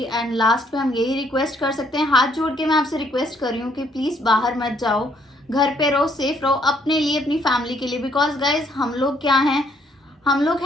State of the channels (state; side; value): normal; both; correlation 0.68